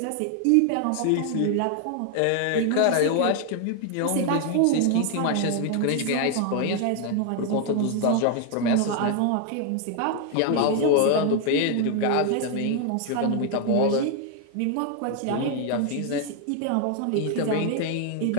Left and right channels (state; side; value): different; both; correlation 0.00